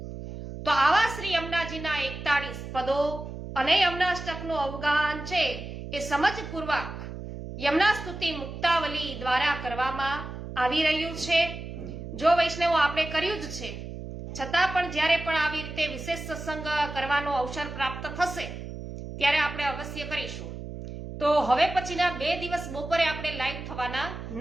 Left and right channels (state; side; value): noise; right; hum, 9 dB below the sound